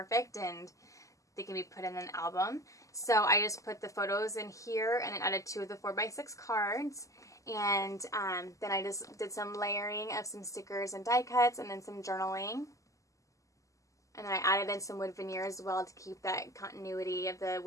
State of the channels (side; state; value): right; late; 0.16 ms